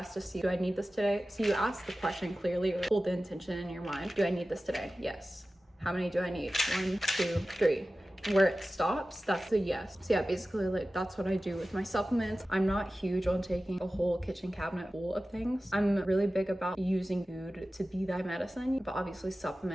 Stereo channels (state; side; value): normal; both; correlation 0.95